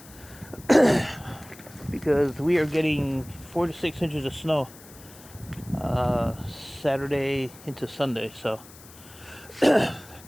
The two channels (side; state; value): left; noise; hiss, 21 dB below the sound